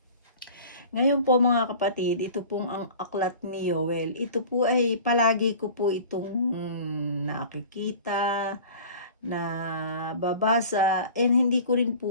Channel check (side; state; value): both; inverted; correlation -0.42